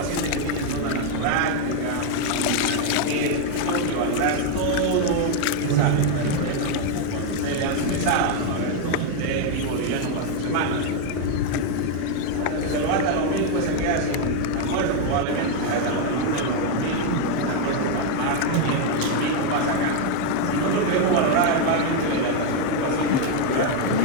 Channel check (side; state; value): both; different; correlation 0.01